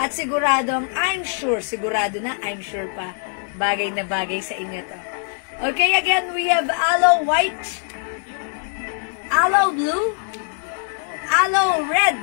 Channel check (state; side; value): silent; right; 57 dB below the other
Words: siguradong, sigurado na, I'm sure pa, bagay na bagay sa inyo to. Okay, again, we have Aloe White, Aloe Blue, Aloe Red,